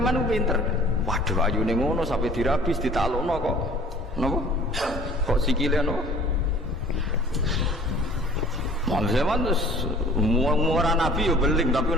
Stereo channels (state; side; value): normal; both; correlation 0.50